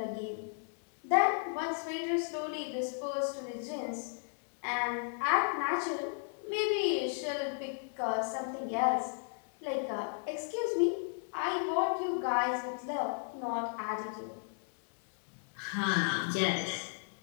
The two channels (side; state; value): right; silent; 55 dB below the other